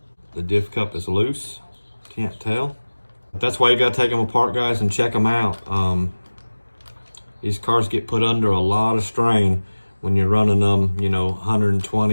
the diff cup is loose. Can't tell. That's why you gotta take them apart, guys, and check them out. These cars get put under a lot of strain when you're running them, you know,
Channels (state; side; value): inverted; both; correlation -1.00